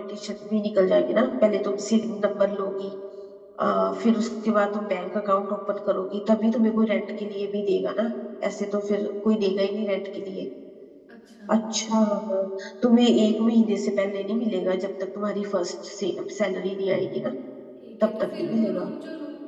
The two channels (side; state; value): both; identical; correlation 1.00